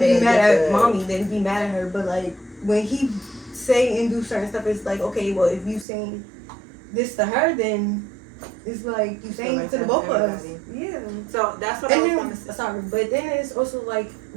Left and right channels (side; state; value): left; drops out; at 5.9 s